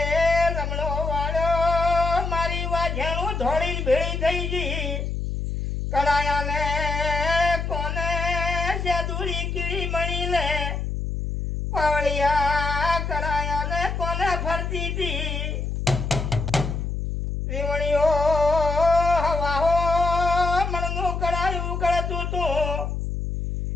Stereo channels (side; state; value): left; noise; hum, 3 dB below the sound